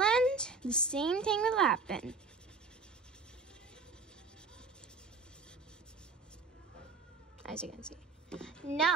the same thing will happen. As you can see.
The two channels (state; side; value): quieter; left; 4.4 dB